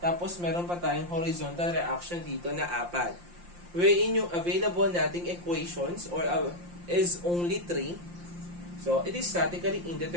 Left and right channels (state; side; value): late; left; 5.7 ms